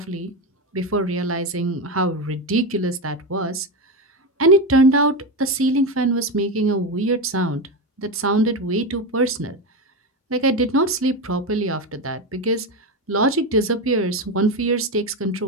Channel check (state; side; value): normal; both; correlation 0.15